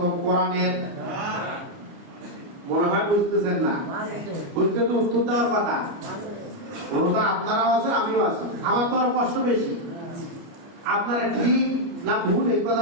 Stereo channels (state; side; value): late; left; 29 ms